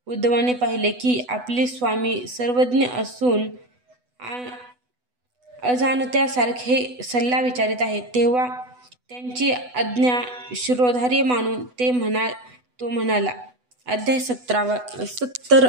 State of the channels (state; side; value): late; left; 8.1 ms